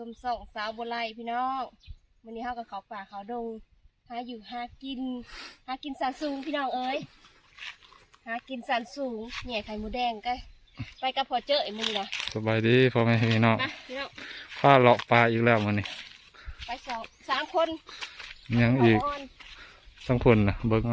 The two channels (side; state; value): both; identical; correlation 1.00